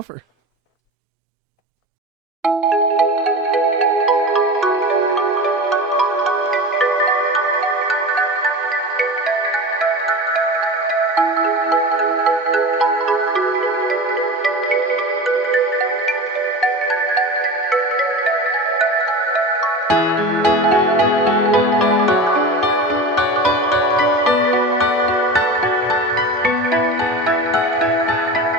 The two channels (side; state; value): both; normal; correlation 0.30